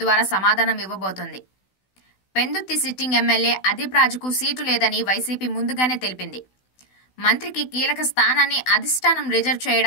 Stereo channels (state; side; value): late; right; 16 ms